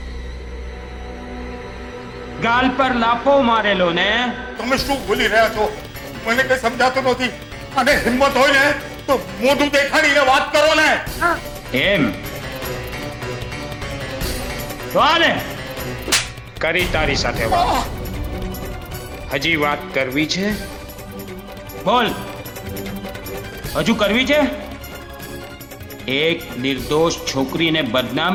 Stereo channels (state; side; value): identical; both; correlation 1.00